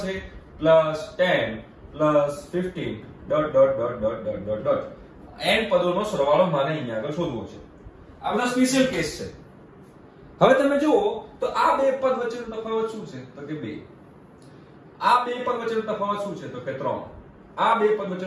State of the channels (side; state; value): both; identical; correlation 1.00